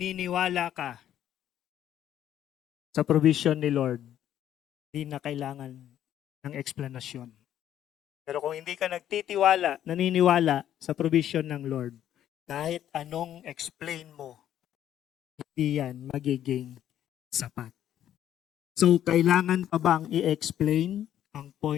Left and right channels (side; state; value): right; quieter; 11.1 dB